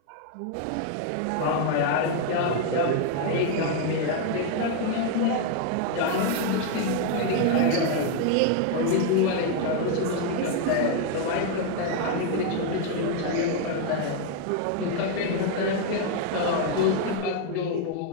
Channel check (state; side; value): different; both; correlation 0.01